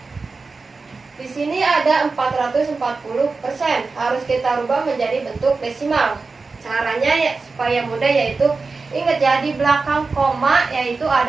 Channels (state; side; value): quieter; left; 4.1 dB